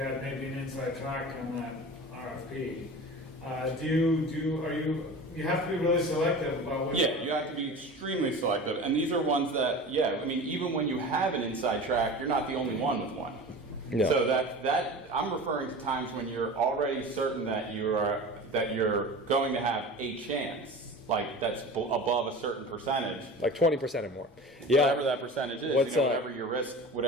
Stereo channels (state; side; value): normal; both; correlation 0.35